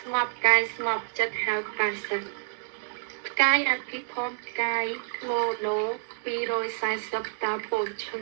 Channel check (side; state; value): left; silent; digital silence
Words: ្ងប់កាយស្ងប់ចិត្តហៅបាសិទ្ធផ្កាយអភិធម្មផ្កាយណូ240តើពោលឈុំ